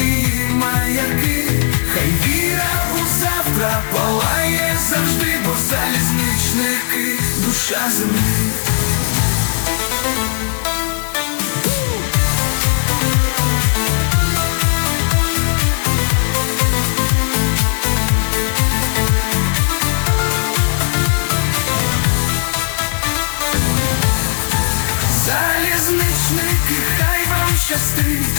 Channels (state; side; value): silent; right; digital silence